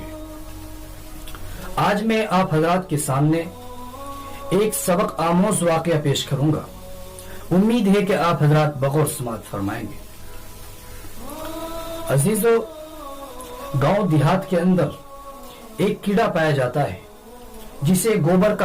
آج میں آپ حضرات کے سامنے ایک سبق آموز واقعہ پیش کروں گا۔ امید ہے کہ آپ حضرات بغور سماعت فرمائیں گے۔ عزیزو، گاؤں دیہات کے اندر ایک کیڑا پایا جاتا ہے جسے گوبر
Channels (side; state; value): both; identical; correlation 1.00